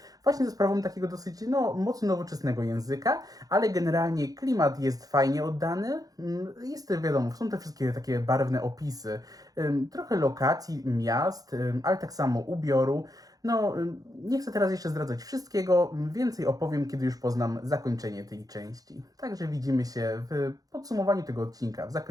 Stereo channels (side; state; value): left; late; 0.18 ms